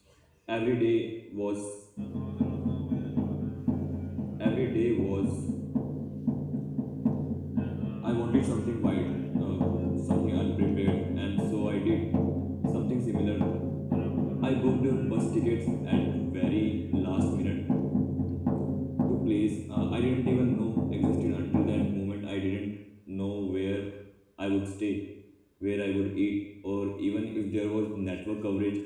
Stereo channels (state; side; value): identical; both; correlation 1.00